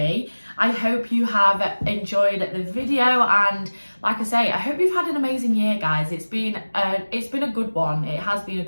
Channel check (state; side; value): inverted; both; correlation -1.00